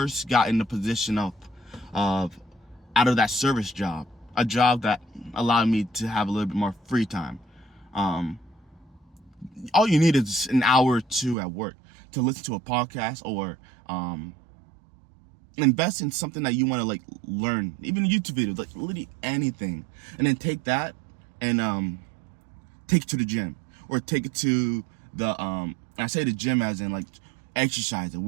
got in the position of out of that service job, a job that allowed me to have a little bit more free time. All you need is an hour or 2 at work to listen to a podcast or invest in something that you want to like learn, even YouTube videos, like literally anything, and then take that and take it to the gym, or take it to the I say the gym as in like exercise and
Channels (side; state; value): left; drops out; at 11.4 s